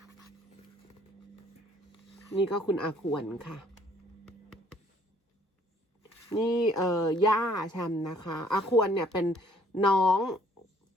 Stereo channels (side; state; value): both; normal; correlation 0.61